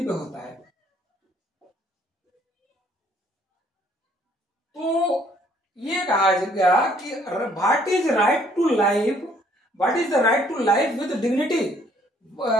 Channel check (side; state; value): both; normal; correlation 0.63